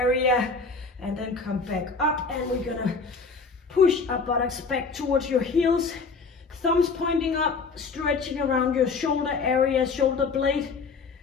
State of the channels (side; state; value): right; quieter; 4.5 dB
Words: and then come back up, and we're gonna push our buttocks back towards your heels, thumbs pointing up, stretching around your shoulder area, shoulder blade,